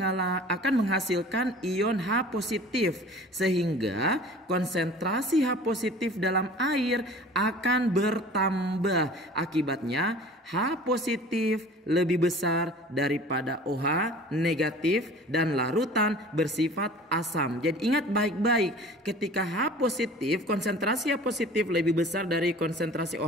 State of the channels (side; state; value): both; normal; correlation 0.44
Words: menghasilkan ion H positif sehingga konsentrasi H positif dalam air akan bertambah. Akibatnya H positif lebih besar daripada OH negatif dan larutan bersifat asam. Jadi ingat baik-baik, ketika H positif, konsentrasi H positif lebih besar dari konsentrasi